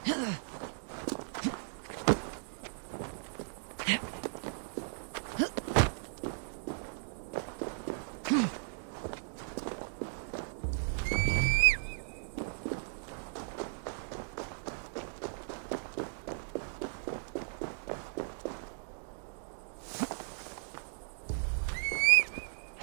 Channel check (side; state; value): left; silent; digital silence